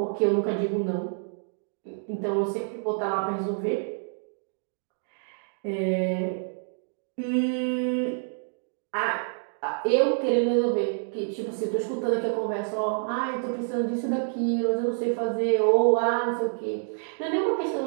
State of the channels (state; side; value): silent; left; digital silence